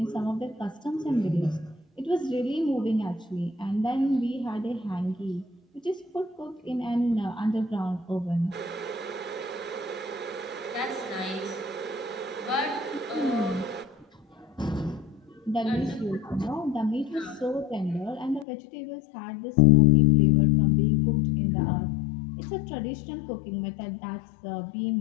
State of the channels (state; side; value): drops out; right; at 18.4 s